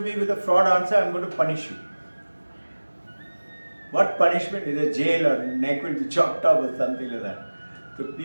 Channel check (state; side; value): inverted; both; correlation -1.00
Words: with a fraud answer, I'm going to punish you. What punishment? Is a jail or neck will be chopped off or something like that. So